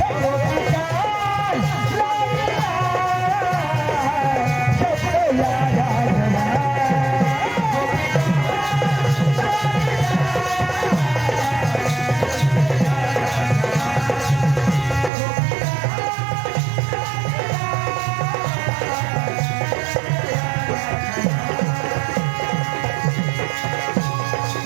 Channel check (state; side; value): drops out; left; at 15.1 s